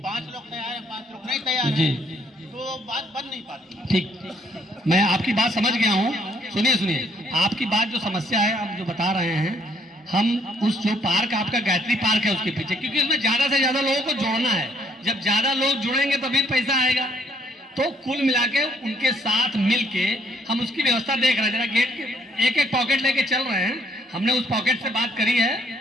5 लोग तैयार हैं, 5 लोग नहीं तैयार हैं, तो बात बन नहीं पाती। ठीक, मैं आपकी बात समझ गया हूँ। सुनिए, आपकी बात जो समस्या है आप जो बता रहे हैं, हम उस जो पार्क आपका गायत्री पार्क है उसके पीछे, क्योंकि उसमें ज्यादा से ज्यादा लोगों को जोड़ना है, जब ज्यादा लोग जुड़ेंगे तभी पैसा आएगा, तो कुल मिला के उनके साथ मिलके हम उसकी व्यवस्था देख रहे हैं। जरा गेट के एक पॉकेट लेके चल रहे हैं, हमने उस पॉकेट से बात करी है,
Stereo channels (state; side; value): normal; both; correlation 0.66